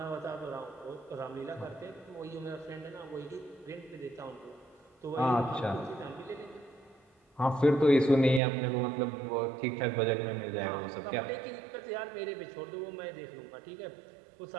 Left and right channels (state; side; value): drops out; left; at 8.4 s